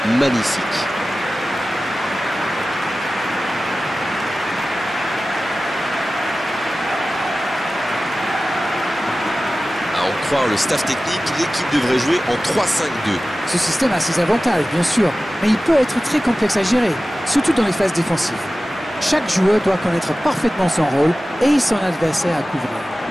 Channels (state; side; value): normal; both; correlation 0.96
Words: Magnifique. À en croire le staff technique, l'équipe devrait jouer en 3-5-2. Ce système a ses avantages, bien sûr, mais il peut être très complexe à gérer, surtout dans les phases défensives. Chaque joueur doit connaître parfaitement son rôle et son adversaire à couvrir.